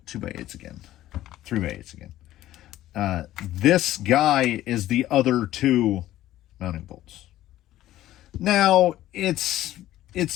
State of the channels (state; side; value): quieter; right; 14.2 dB